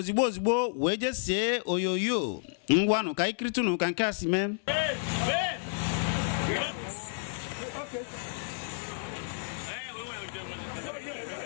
wee jesie oyoyo. Ngwanụ ka ikritunu ka nke a si mee.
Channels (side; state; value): right; silent; 56 dB below the other